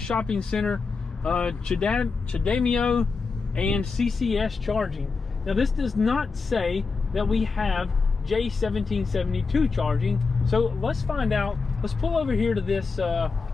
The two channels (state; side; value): quieter; right; 4.5 dB